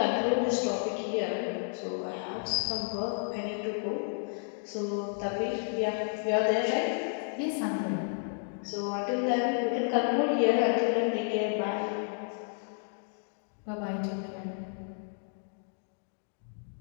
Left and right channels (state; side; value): silent; right; 57 dB below the other